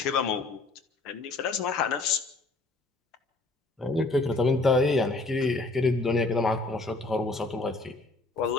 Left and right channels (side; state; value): right; quieter; 3.2 dB